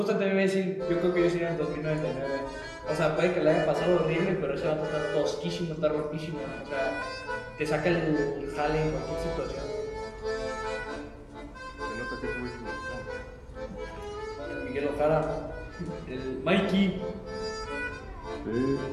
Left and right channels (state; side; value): identical; both; correlation 1.00